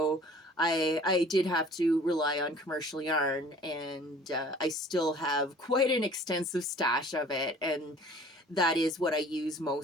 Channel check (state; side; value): normal; both; correlation 0.50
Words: I did have to rely on commercial yarn, and I still have quite an extensive stash of it, and that is what I use